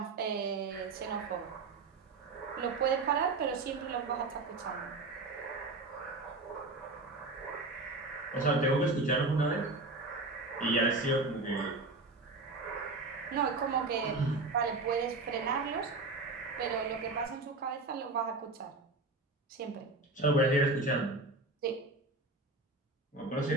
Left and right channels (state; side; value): quieter; left; 3.3 dB